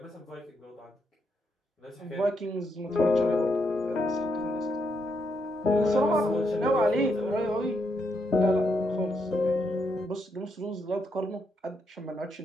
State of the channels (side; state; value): both; normal; correlation 0.79